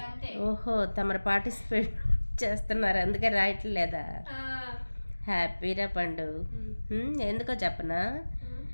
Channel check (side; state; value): both; inverted; correlation -1.00